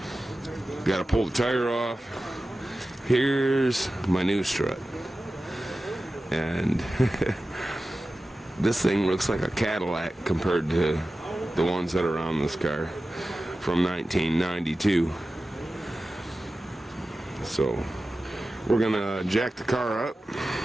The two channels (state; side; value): normal; both; correlation 0.95